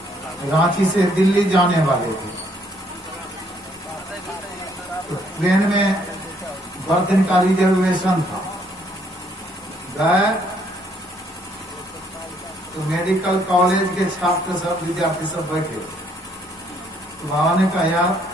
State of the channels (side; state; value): both; normal; correlation 0.67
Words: रांची से दिल्ली जाने वाले थे तो ट्रेन में बर्थ का रिजर्वेशन था, गए तो मेडिकल कॉलेज के छात्र सब विद्यार्थी सब बैठे तो बाबा ने कहा यार